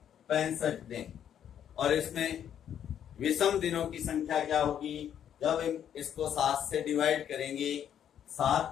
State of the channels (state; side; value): quieter; right; 9.5 dB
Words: दिन। और इसमें विषम दिनों की संख्या क्या होगी? जब हम इसको 7 से डिवाइड करेंगे,